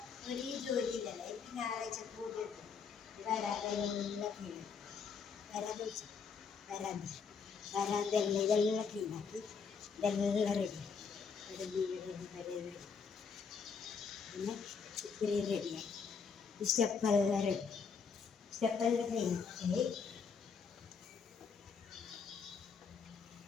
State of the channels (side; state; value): right; quieter; 5.8 dB